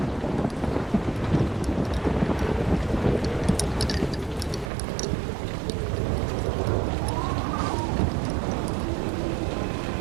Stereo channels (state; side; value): drops out; left; at 4.7 s